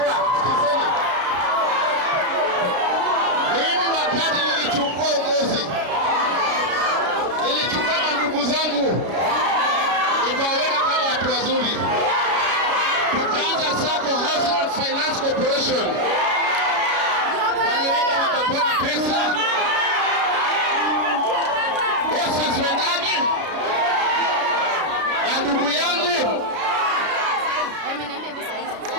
sikizeni. Mimi wakati nilichukua uongozi, nilichukua ndugu zangu nikawaweka kama watu wazuri, tukaanza Sacco Housing and Finance Corporation. Walienda wakapona pesa, bosses wendani na ndugu yangu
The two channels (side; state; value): left; late; 33 ms